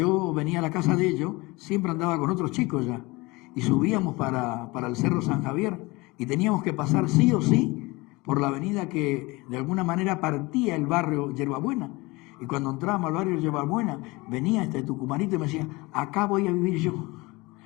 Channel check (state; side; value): quieter; right; 23.4 dB